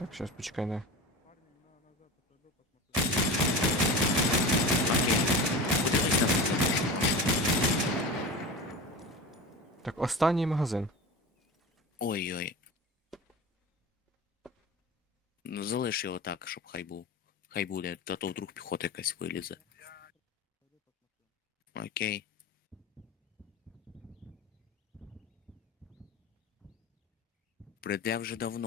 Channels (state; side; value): normal; both; correlation 0.30